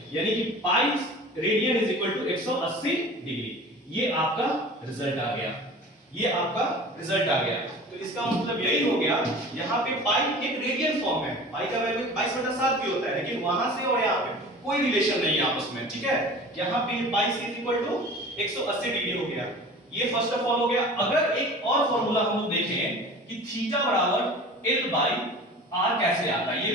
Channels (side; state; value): both; normal; correlation 0.40